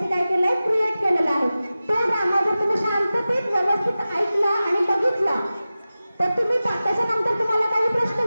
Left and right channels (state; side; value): inverted; both; correlation -0.95